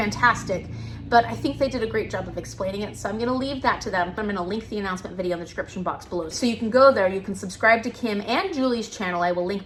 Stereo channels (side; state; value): both; identical; correlation 1.00